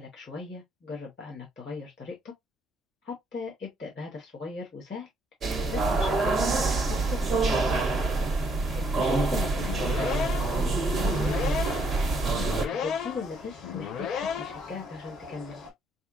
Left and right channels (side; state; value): both; normal; correlation 0.70